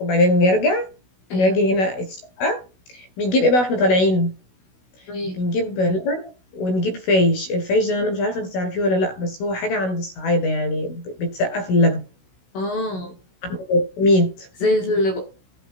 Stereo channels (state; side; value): late; right; 16 ms